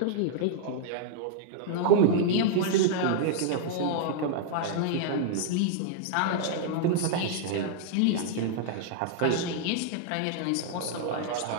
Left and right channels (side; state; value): both; different; correlation -0.01